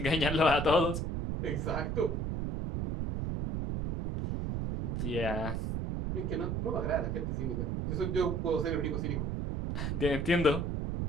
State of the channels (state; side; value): noise; right; rumble, 1 dB below the sound